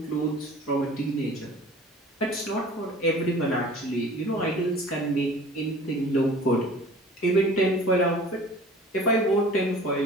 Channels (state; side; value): normal; both; correlation 0.45